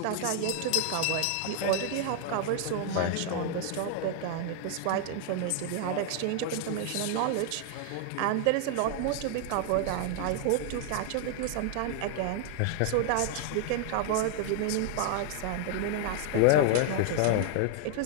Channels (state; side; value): different; both; correlation 0.00